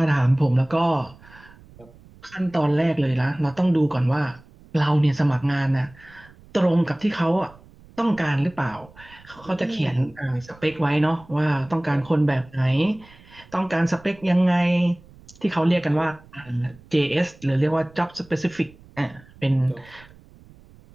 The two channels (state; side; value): noise; right; rumble, 24 dB below the sound